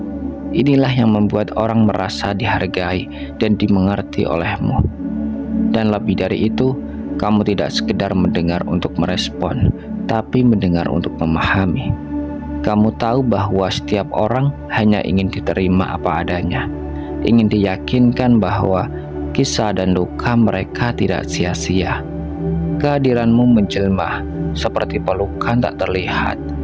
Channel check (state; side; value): identical; both; correlation 1.00